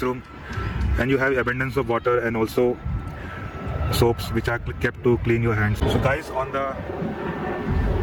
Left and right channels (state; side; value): identical; both; correlation 1.00